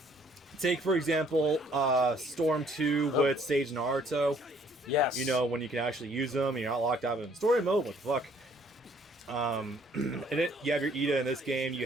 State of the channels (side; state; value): both; normal; correlation 0.62